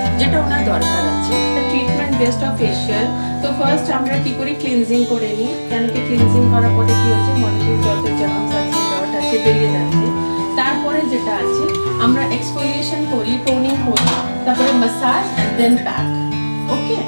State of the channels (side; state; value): both; inverted; correlation -1.00